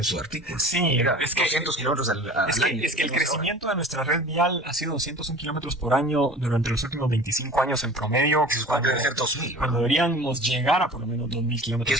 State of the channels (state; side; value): normal; both; correlation 0.41